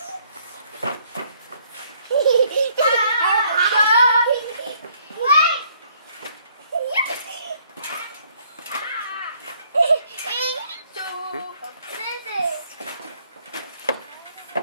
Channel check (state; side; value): inverted; both; correlation -0.65